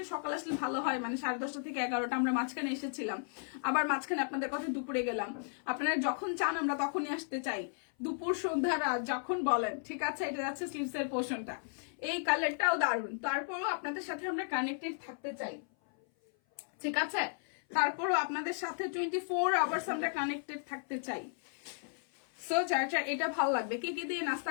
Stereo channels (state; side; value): silent; right; 55 dB below the other